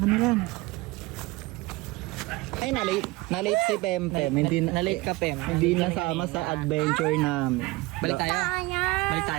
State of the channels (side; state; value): left; quieter; 21.6 dB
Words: na lang. Ay, na-late si Pempem. Hindi Na-late ka, Pem. Hindi nasama sa adventure namin. Balik tayo. Balik